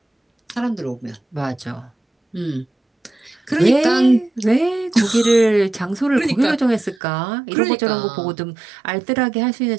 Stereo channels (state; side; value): drops out; left; at 7.0 s